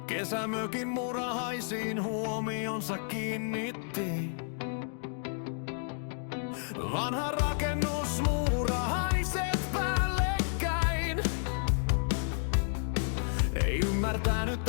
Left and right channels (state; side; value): silent; right; digital silence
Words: Kesämökin murahaisiin huomionsa kiinnitti. Vanha rakennus, muurahaiset päällekkäin. Ei ymmärtänyt